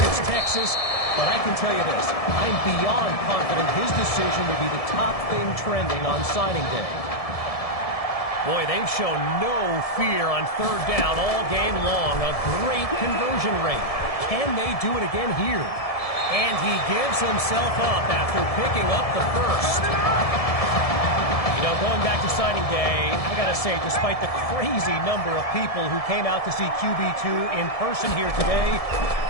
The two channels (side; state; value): right; late; 1.7 ms